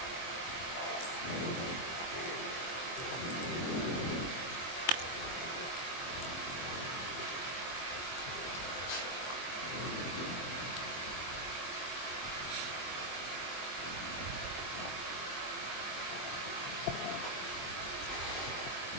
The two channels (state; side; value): late; right; 23 ms